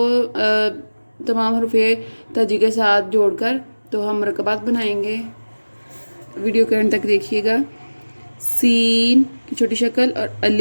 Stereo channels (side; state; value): both; inverted; correlation -1.00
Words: تمام حروف تہجی کے ساتھ جوڑ کر تو ہم مرکبات بنائیں گے۔ ویڈیو کے اینڈ تک دیکھیے گا۔ سین کی چھوٹی شکل اور